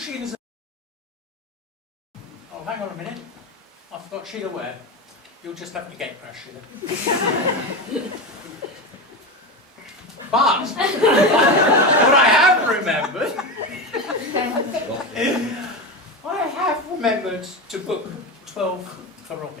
Oh, hang on a minute. I forgot Sheila where. You'll just have to gate crash, Sheila. But what I have remembered to book 12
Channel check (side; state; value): both; normal; correlation 0.19